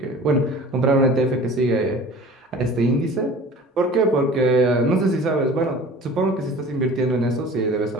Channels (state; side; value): normal; both; correlation 0.43